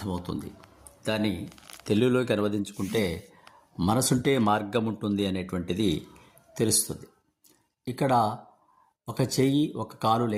దాన్ని తెలుగులోకి అనువదించుకుంటే మనసుంటే మార్గం ఉంటుంది అనేటువంటిది తెలుస్తుంది. ఇక్కడ ఒక చెయ్యి ఒక కాలు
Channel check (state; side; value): identical; both; correlation 1.00